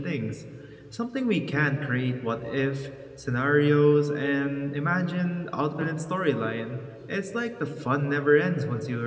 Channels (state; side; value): identical; both; correlation 1.00